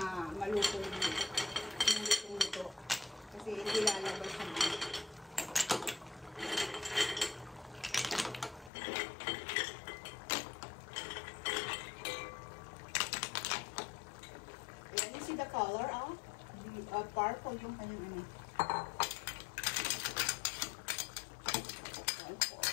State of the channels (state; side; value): drops out; right; at 8.7 s